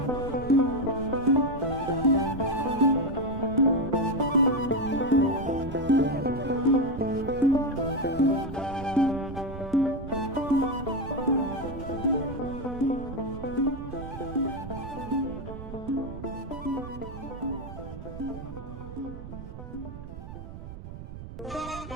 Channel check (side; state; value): right; noise; rumble, 11 dB below the sound